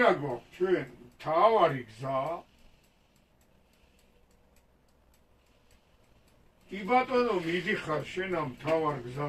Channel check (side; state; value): both; identical; correlation 1.00